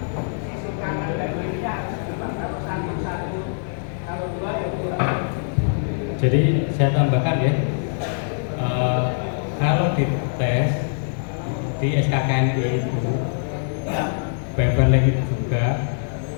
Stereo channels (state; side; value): silent; right; digital silence